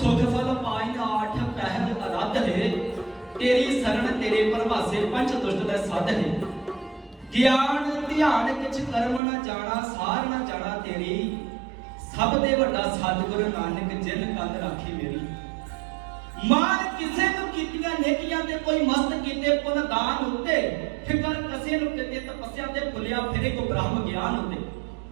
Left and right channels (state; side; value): drops out; left; at 9.2 s